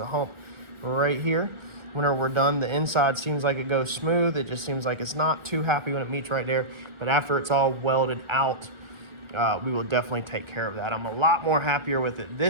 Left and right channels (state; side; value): late; left; 1.4 ms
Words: hump right here. Whenever we're done, the inside seems like it goes smooth. It just seems like it's not too happy when it meets right there. But after it's all welded out, we will definitely take care of that. I'm a lot more happier with it